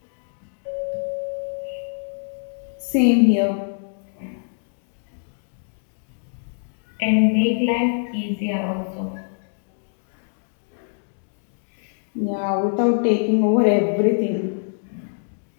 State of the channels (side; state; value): right; silent; digital silence